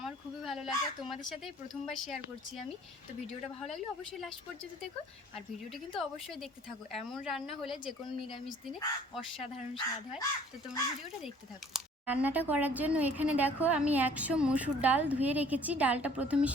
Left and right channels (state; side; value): normal; both; correlation 0.54